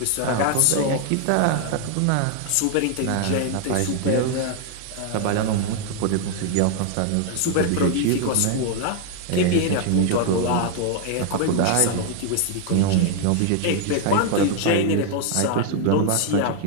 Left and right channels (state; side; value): different; both; correlation 0.00